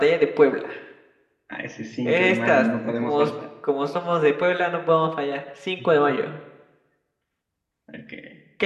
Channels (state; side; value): identical; both; correlation 1.00